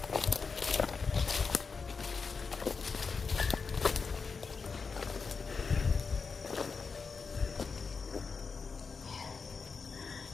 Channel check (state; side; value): quieter; right; 5.0 dB